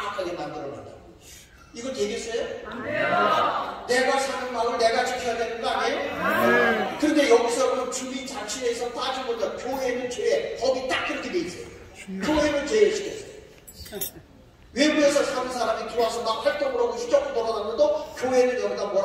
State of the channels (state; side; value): identical; both; correlation 1.00